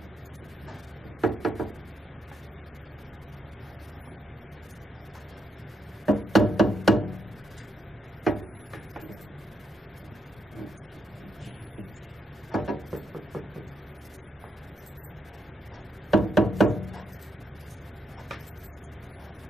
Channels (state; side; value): normal; both; correlation 0.79